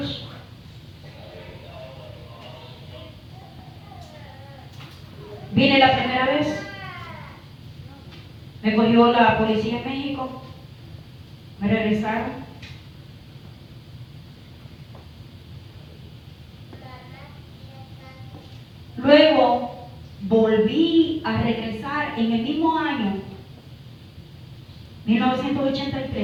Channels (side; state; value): both; identical; correlation 1.00